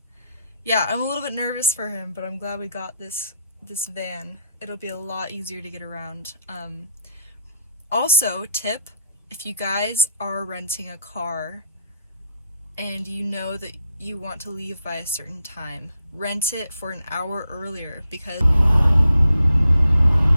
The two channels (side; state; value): both; inverted; correlation -0.76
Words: yeah, I'm a little bit nervous for him, but I'm glad we got this van. It'll be a lot easier to get around. Also, tip, if you guys are renting a car and you know that you want to leave by a certain time, rent it for an hour earlier, because